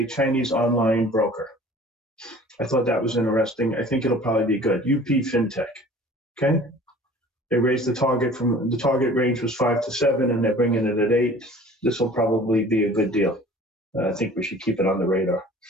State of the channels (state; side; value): normal; both; correlation 0.47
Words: Chinese online broker. I thought that was interesting. I think it'll probably be good. UP FinTech. Okay. They raised the target range was 5 to 7, and they're bringing it at 8. This will probably be a good deal. I think we should keep it on the radar.